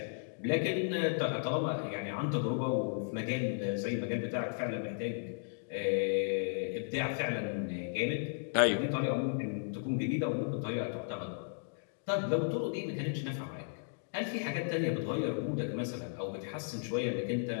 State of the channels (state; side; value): silent; right; digital silence